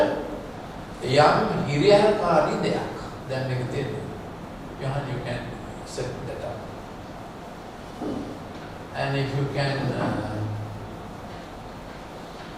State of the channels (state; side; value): identical; both; correlation 1.00